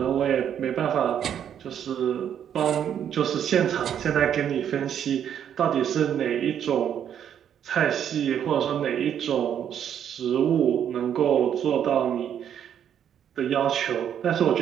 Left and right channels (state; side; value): quieter; left; 9.2 dB